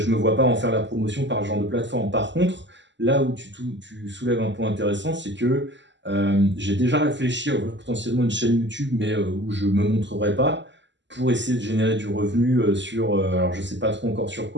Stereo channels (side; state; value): left; late; 0.53 ms